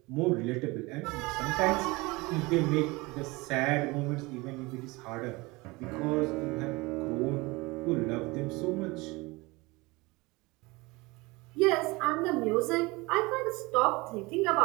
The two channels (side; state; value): left; quieter; 23.6 dB